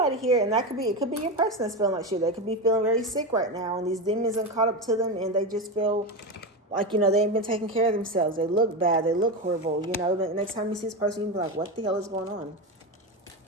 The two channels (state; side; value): normal; both; correlation 0.17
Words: here, and it could be your person that's feeling like shit. They could be feeling very sick right now, and these demons have caught up to them, and they just feel like, you know, they ain't been taking care of themselves. They look bad. They look horrible. You know, the next time you see this person, you can be like, what the hell is going on?